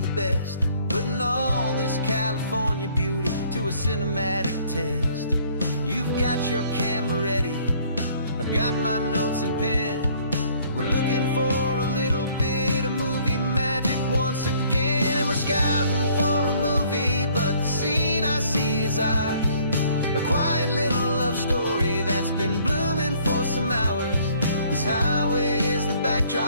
best, putting all this California beauty to a cinematic test. You've got your camera ready, I've got my notes and pen. We're looking for a little bit of movie magic once again. And we're scouting for a movie, but the scene I see is ours. A quiet little love story that's been blooming for some hours. This highway is the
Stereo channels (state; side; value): inverted; both; correlation -0.60